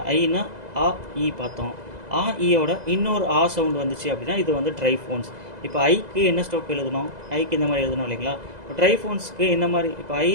ஐனா ஆ இ பார்த்தோம். ஆ ஈயோட இன்னொரு ஆ சவுண்டு வந்துச்சு அப்படின்னா இது வந்து ட்ரைஃபோன்ஸ். இப்போ ஐக்கு என்ன ஸ்ட்ரோக் எழுதணும், ஐக்கு இந்த மாதிரி எழுதணும் இல்லைங்களா. இப்போ ட்ரைஃபோன்ஸ்க்கு என்ன மாதிரி, இப்போ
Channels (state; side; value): late; left; 2.0 ms